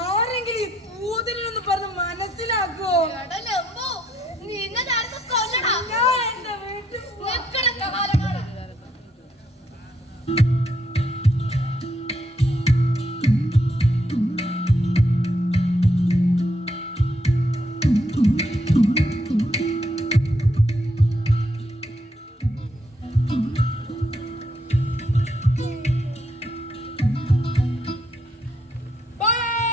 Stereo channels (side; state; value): both; normal; correlation 0.74